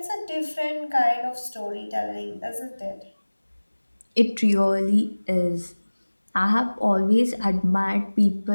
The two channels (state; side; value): inverted; both; correlation -1.00